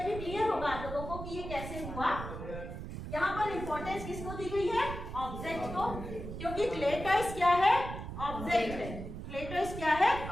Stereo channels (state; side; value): noise; right; rumble, 8 dB below the sound